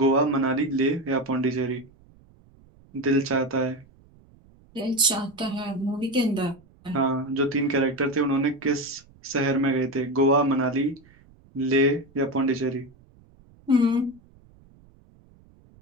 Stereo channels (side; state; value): right; noise; rumble, 28 dB below the sound